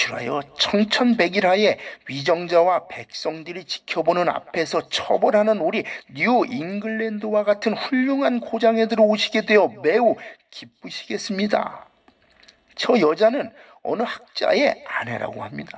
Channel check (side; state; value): both; identical; correlation 1.00